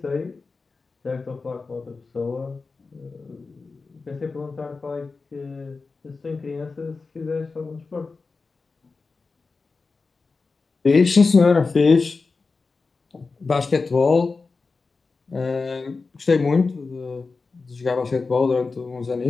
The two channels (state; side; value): quieter; right; 4.2 dB